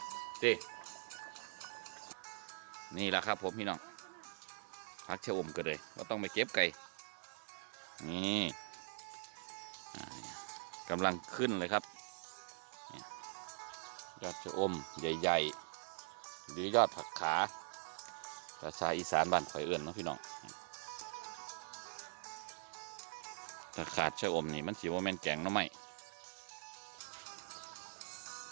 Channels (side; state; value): left; silent; digital silence